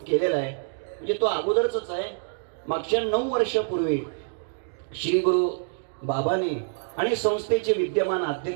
आहे. म्हणजे तो अगोदरच आहे. मागच्या 9 वर्षापूर्वी श्री गुरु बाबांनी आणि संस्थेचे विद्यमान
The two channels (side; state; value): left; silent; digital silence